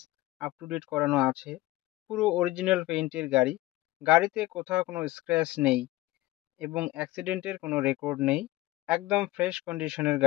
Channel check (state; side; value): quieter; right; 17.8 dB